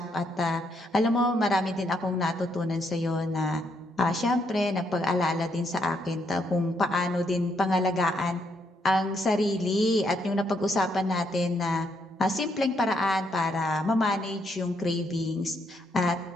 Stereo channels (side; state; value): both; normal; correlation 0.75